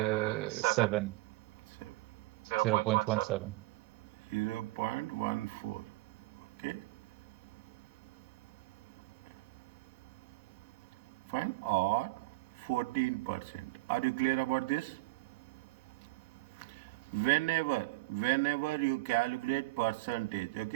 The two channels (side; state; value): left; quieter; 19.9 dB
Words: 0.17. 0.14. Okay. Fine. Or 14%. Are you clear about this? Whenever you calculate percentage,